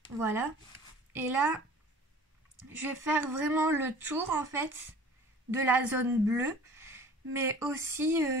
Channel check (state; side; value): normal; both; correlation 0.46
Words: Voilà. Et là, je vais faire vraiment le tour en fait de la zone bleue. Mais aussi